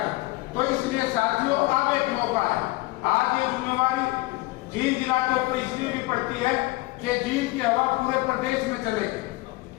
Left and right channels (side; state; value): right; quieter; 21.1 dB